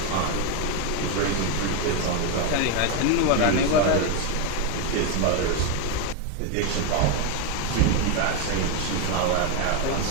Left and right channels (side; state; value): both; different; correlation 0.02